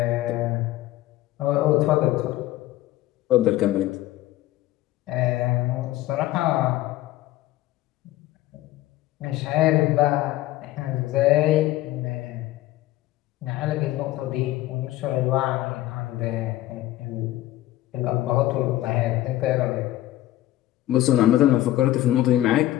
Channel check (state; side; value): quieter; right; 15.2 dB